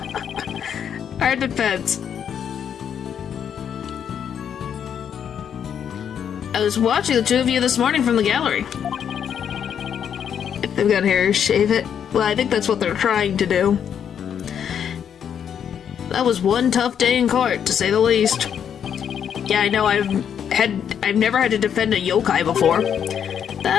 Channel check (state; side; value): quieter; right; 8.4 dB